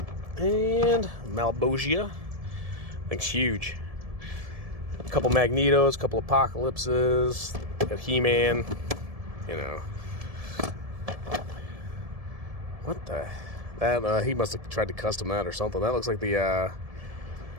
And Malbogia. I think it's huge. A couple Magnetos, a couple Apocalypses. Got He-Man. You know. What the? That he must have tried to custom that or something. That looks like the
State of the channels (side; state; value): left; late; 1.7 ms